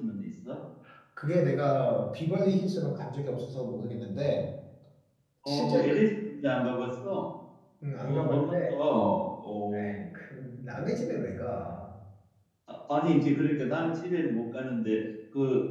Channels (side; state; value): both; identical; correlation 1.00